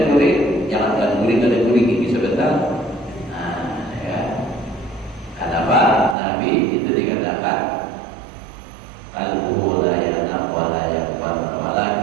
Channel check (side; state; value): left; drops out; at 6.2 s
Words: gurih, jangan kan gurih kada gurih gigi sebentar. Nah, ya. Kenapa Nabi itu dikatakan qalbuhu la yanam wa la yaqbal